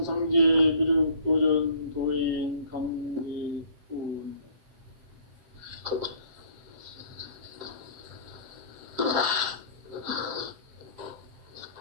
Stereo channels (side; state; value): left; late; 7.5 ms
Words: 미륵 도전 도인 강대군.